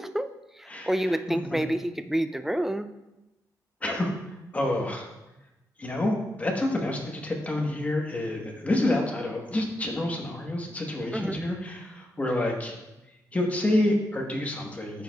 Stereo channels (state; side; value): normal; both; correlation 0.86